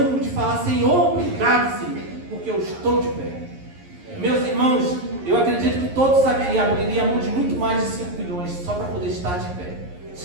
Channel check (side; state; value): left; late; 11 ms